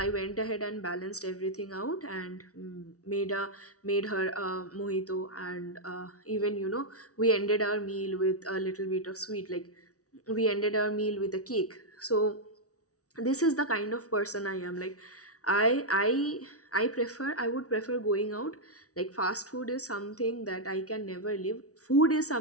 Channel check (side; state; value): right; late; 0.66 ms